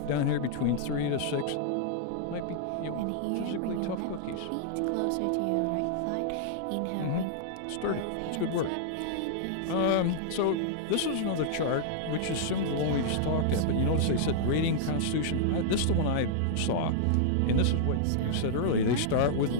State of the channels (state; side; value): different; both; correlation -0.01